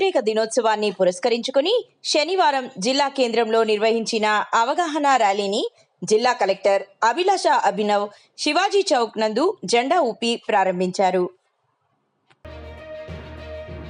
దినోత్సవాన్ని పురస్కరించుకుని శనివారం జిల్లా కేంద్రంలో నిర్వహించిన అవగాహన ర్యాలీని జిల్లా కలెక్టర్ అభిలాష అభినవ్ శివాజీ చౌక్ నందు జెండా ఊపి ప్రారంభించారు.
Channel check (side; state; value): both; identical; correlation 1.00